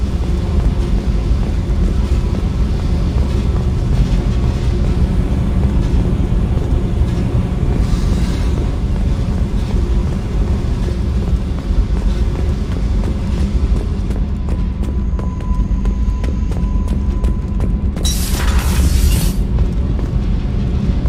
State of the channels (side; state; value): both; identical; correlation 1.00